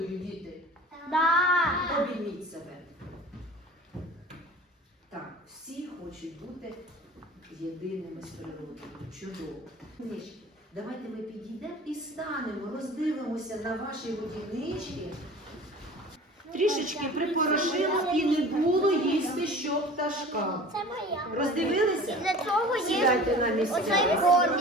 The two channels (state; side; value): normal; both; correlation 0.41